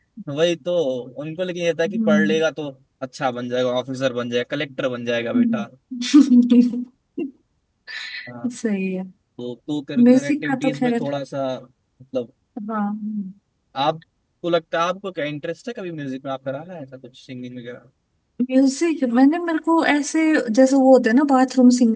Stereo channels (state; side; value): identical; both; correlation 1.00